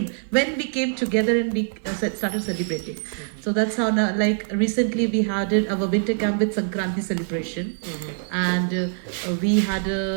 when we came together and we started celebrating. So that's how now, like recently we had our winter camp with Sankranti celebration, and we had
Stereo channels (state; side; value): silent; left; 56 dB below the other